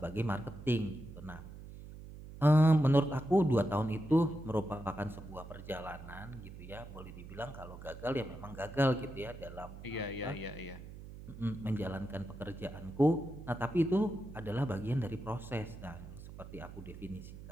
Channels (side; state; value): right; noise; hum, 13 dB below the sound